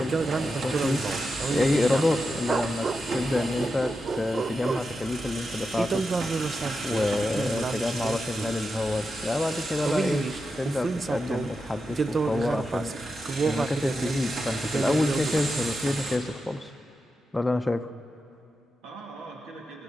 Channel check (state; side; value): normal; both; correlation 0.89